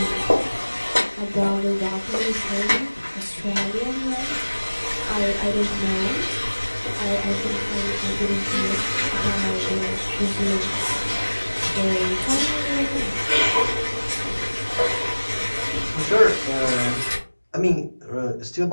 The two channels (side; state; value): both; inverted; correlation -1.00